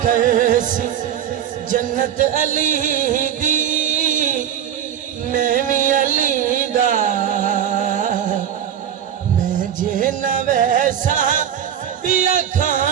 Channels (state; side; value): quieter; left; 9.7 dB